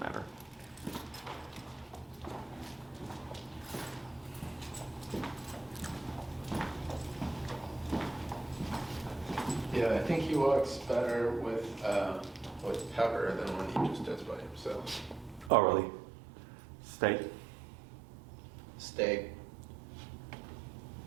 Yeah, I think he walks better with Pepper than when he just does by himself. Oh, really? Stay. Stay.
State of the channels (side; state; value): left; drops out; at 15.5 s